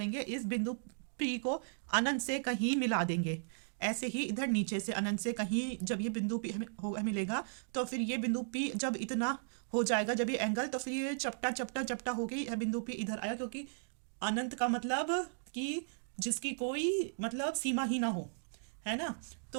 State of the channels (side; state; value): left; silent; digital silence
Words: इस बिंदु पी को अनंत से कहीं मिला देंगे। ऐसे ही इधर नीचे से अनंत से कहीं जब ये बिंदु पी हमें मिलेगा, तो फिर ये बिंदु पी जब इतना हो जाएगा, जब ये एंगल, तो फिर ये चपटा चपटा चपटा हो गई, बिंदु पी इधर आया, क्योंकि अनंत का मतलब कि जिसकी कोई मतलब सीमा ही ना हो, है ना।